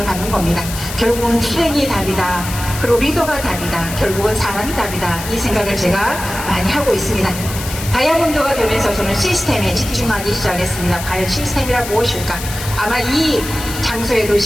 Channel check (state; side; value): noise; left; hiss, 9 dB below the sound